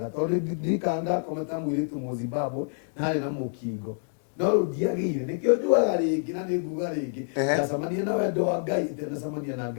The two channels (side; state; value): right; silent; digital silence